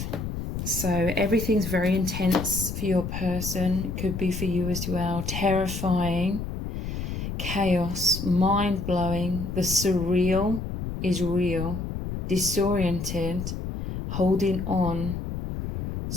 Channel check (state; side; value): noise; left; rumble, 5 dB below the sound